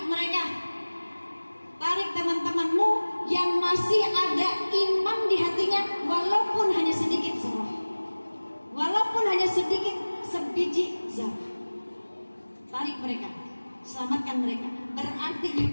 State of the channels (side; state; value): both; inverted; correlation -1.00